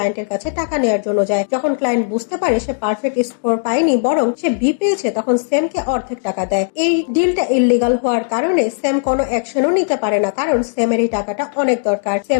কাছে টাকা নেওয়ার জন্য যায়। যখন ক্লায়েন্ট বুঝতে পারে সে পারফেক্ট স্কোর পায়নি, বরং সে বি পেয়েছে, তখন স্যামকে অর্ধেক টাকা দেয়। এই ডিলটা ইল্লিগাল হওয়ার কারণে স্যাম কোনো অ্যাকশনও নিতে পারে না, কারণ স্যামের এই টাকাটা অনেক দরকার।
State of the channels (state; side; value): silent; right; digital silence